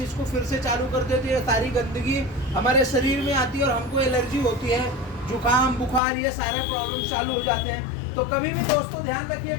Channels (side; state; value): right; drops out; at 6.0 s